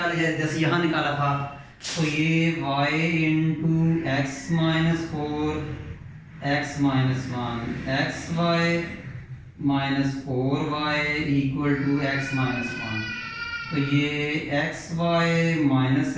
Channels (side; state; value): both; identical; correlation 1.00